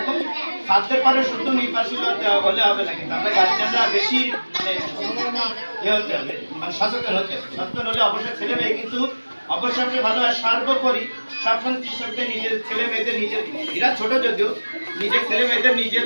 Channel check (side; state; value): both; inverted; correlation -1.00